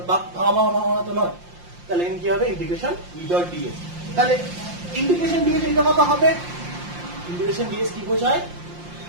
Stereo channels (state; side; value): late; left; 5.7 ms